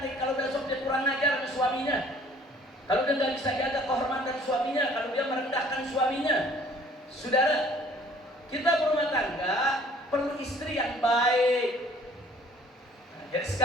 kalau besok dia kurang ajar sama suaminya, kalau dia nggak bisa jaga kehormatan suaminya, kalau dia merendahkan suaminya. Saudara, kita berumah tangga perlu istri yang baik. Jadi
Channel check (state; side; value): normal; both; correlation 0.55